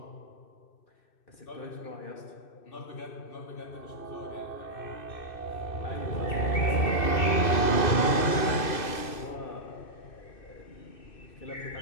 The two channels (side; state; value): right; late; 2.6 ms